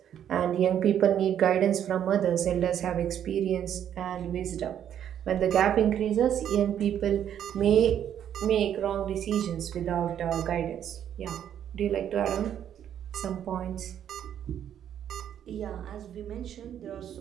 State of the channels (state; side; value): quieter; left; 9.8 dB